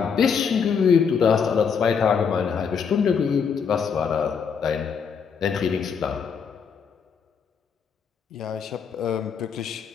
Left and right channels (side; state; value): right; quieter; 6.4 dB